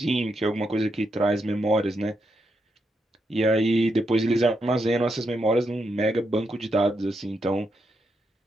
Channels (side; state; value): both; normal; correlation 0.82